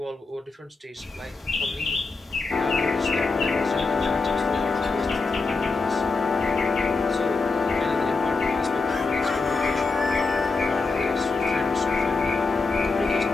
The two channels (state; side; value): quieter; right; 4.0 dB